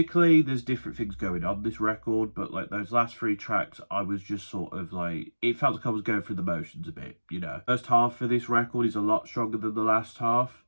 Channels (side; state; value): both; inverted; correlation -1.00